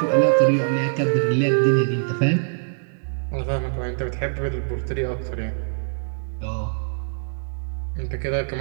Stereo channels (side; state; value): left; silent; digital silence